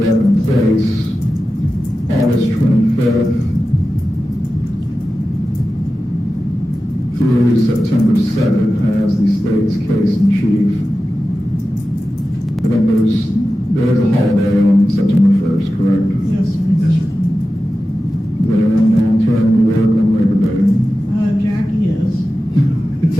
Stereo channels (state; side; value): normal; both; correlation 0.93